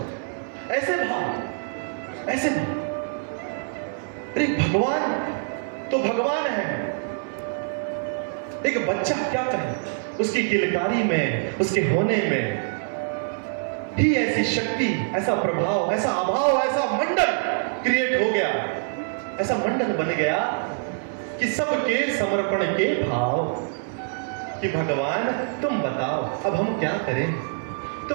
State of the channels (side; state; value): left; silent; 62 dB below the other